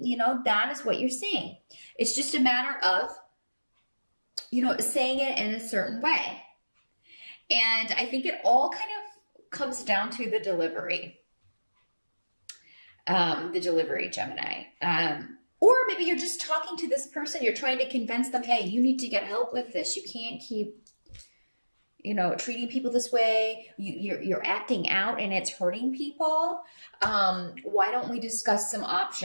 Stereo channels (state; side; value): inverted; both; correlation -1.00